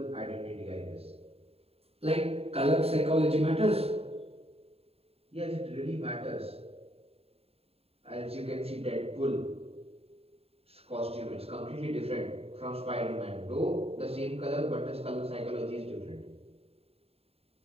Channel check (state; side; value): late; left; 0.29 ms